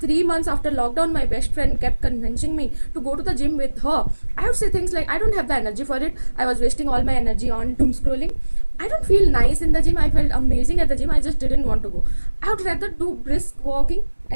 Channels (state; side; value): inverted; both; correlation -1.00